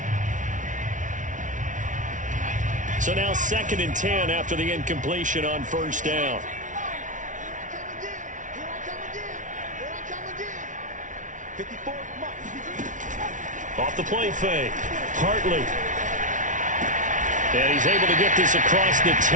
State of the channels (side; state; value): left; late; 0.37 ms